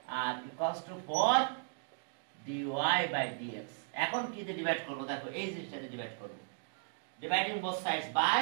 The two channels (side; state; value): left; silent; digital silence